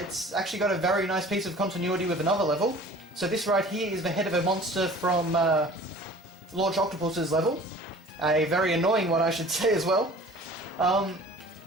It's actually got a very nice piece of continuity with another level. So this right here is the head of a monster from Launch Octopus's level. A very annoying one, I should say, as well.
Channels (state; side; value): normal; both; correlation 0.46